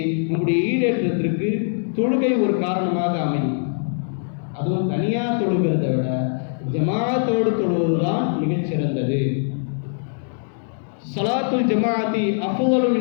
நம்முடைய ஈடேற்றத்திற்கு தொழுகை ஒரு காரணமாக அமையும். அதுவும் தனியாக தொழுகிறதை விட ஜமாஅத்தோடு தொழுவதுதான் மிகச்சிறந்தது. ஸலாத்துல் ஜமாஅத்தி அஃதலு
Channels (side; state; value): right; silent; digital silence